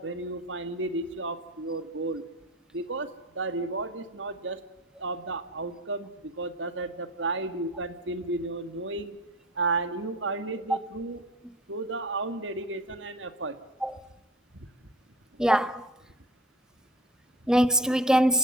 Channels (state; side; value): normal; both; correlation 0.39